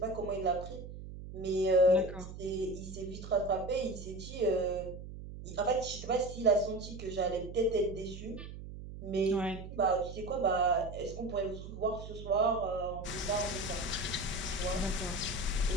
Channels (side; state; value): right; noise; hum, 11 dB below the sound